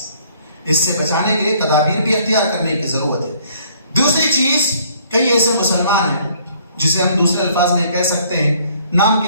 اس سے بچانے کے لیے تدابیر بھی اختیار کرنے کی ضرورت ہے۔ دوسری چیز، کئی ایسے مسلمان ہیں جسے ہم دوسرے الفاظ میں کہہ سکتے ہیں نام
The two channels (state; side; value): inverted; both; correlation -0.61